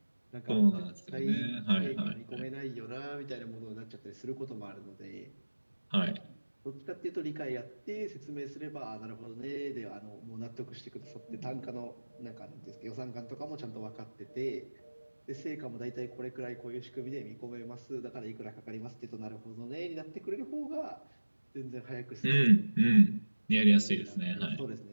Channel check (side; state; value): both; inverted; correlation -1.00